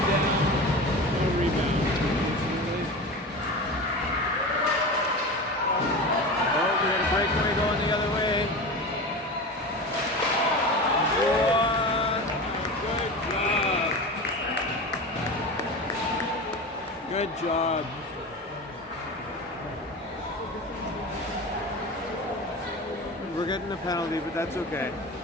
down. No rebound. Oh, we got a breakaway going the other way. Good job. We're getting a penalty, but that's okay.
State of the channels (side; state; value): both; normal; correlation 0.29